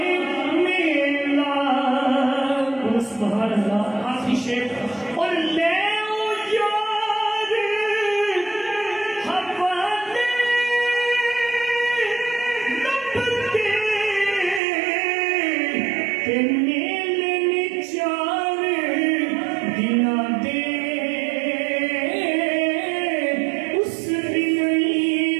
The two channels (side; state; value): left; drops out; at 14.6 s